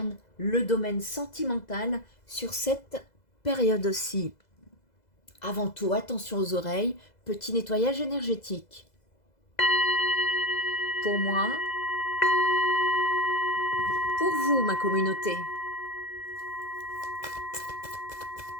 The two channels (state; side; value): late; right; 2.0 ms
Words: le domaine sentimental sur cette période-ci. Avant tout, attention aux oreilles, petit nettoyage énergétique. Pour moi, pour vous, ma communauté.